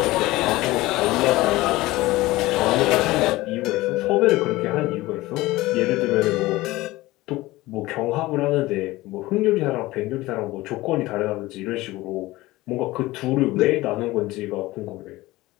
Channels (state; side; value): quieter; right; 18.9 dB